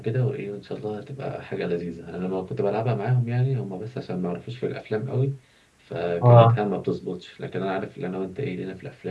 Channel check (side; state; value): both; identical; correlation 1.00